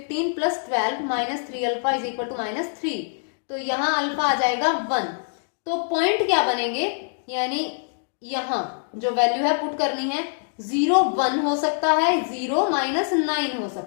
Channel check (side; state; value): right; silent; digital silence